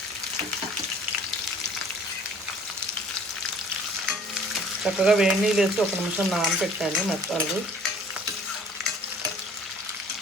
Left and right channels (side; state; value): both; normal; correlation 0.53